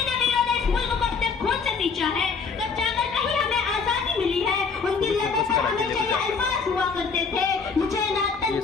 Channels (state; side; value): quieter; right; 5.3 dB